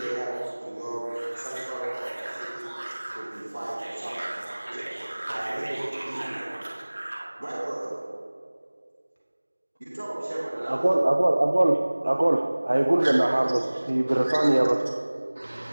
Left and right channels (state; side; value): inverted; both; correlation -1.00